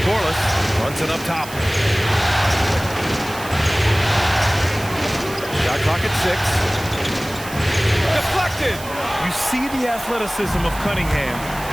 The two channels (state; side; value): noise; right; hiss, 14 dB below the sound